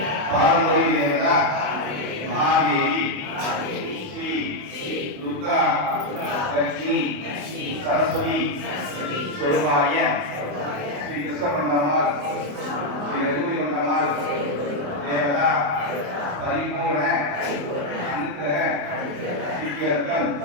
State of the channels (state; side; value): late; left; 28 ms